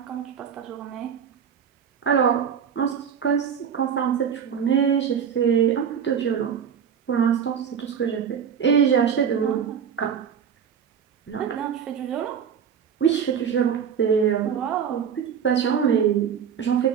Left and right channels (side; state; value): left; quieter; 7.7 dB